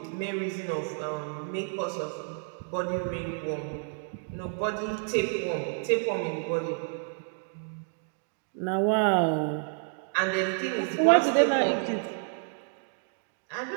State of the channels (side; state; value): left; silent; 58 dB below the other